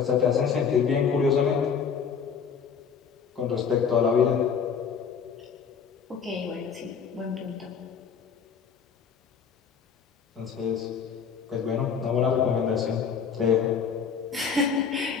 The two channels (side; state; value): right; quieter; 6.5 dB